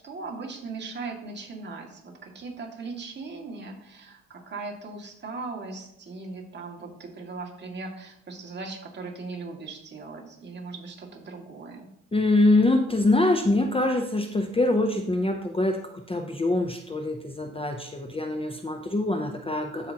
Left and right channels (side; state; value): both; normal; correlation 0.71